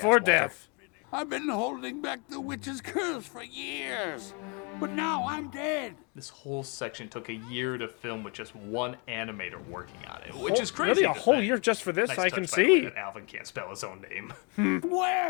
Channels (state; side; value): quieter; right; 33.1 dB